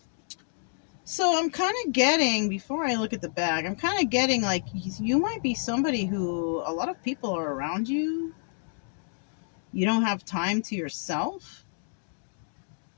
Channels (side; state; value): right; silent; digital silence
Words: So I'm kind of getting, before I look at the bag, I'm kind of getting like you might be somebody who a lot of people are around you. You don't have time to yourself.